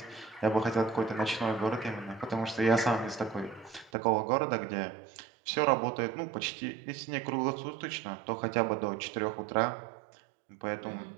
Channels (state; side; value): drops out; left; at 3.9 s